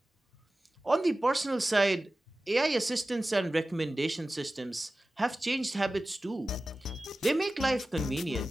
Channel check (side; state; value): both; normal; correlation 0.96